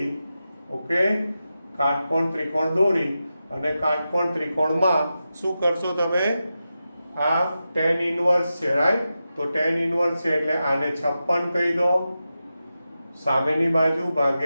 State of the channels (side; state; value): both; inverted; correlation -0.91